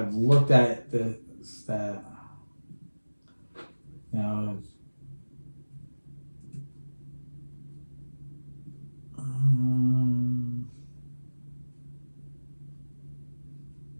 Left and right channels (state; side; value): inverted; both; correlation -1.00